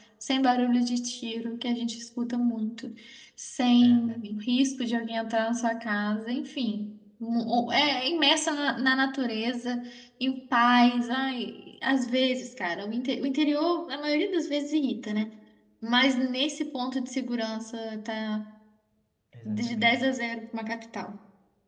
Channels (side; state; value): both; identical; correlation 1.00